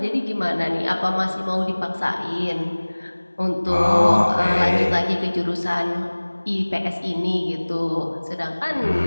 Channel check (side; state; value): both; inverted; correlation -1.00